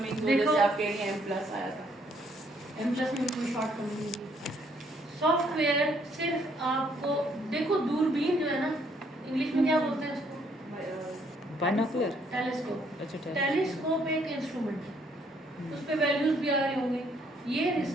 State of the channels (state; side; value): normal; both; correlation 0.68